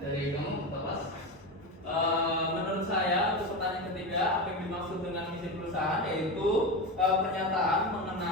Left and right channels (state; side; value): normal; both; correlation 0.20